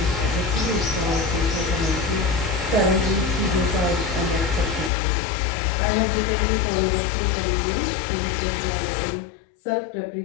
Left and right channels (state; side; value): drops out; right; at 4.9 s